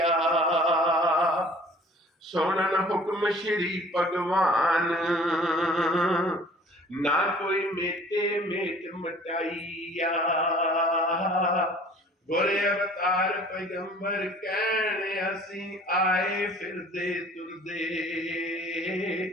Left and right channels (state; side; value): normal; both; correlation 0.50